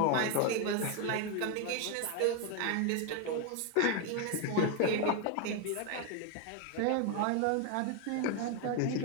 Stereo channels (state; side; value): different; both; correlation 0.01